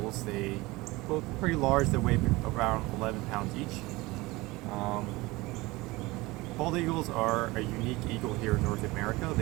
They both pretty large. They weigh around 11 pounds each. Bald eagles are a unique eagle here in North America.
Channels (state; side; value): quieter; left; 21.5 dB